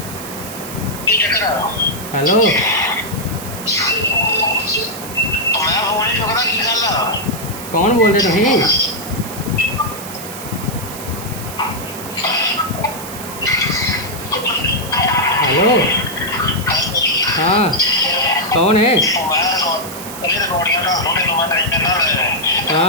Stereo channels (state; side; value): noise; right; hiss, 12 dB below the sound